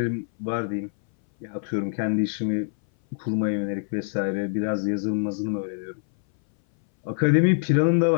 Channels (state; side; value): silent; right; 60 dB below the other